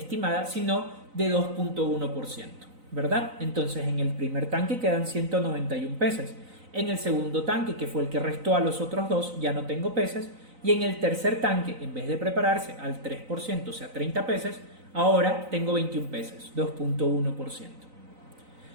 sino de 2.1%, ¿verdad? Entonces en el primer tanque quedan 191 peces. En el segundo tanque, que fue el que restó a los otros dos, ya no tengo peces. Y en el tercer tanque, en vez de prepararse al 3%, o sea 30 peces, ahora tengo 21 peces, 2.1%.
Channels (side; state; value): left; late; 3.9 ms